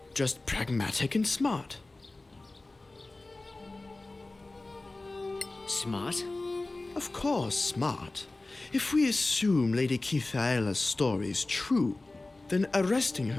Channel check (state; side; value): quieter; right; 3.1 dB